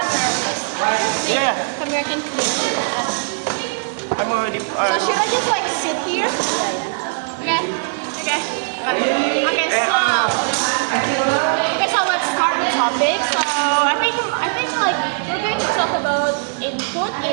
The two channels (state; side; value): silent; left; 66 dB below the other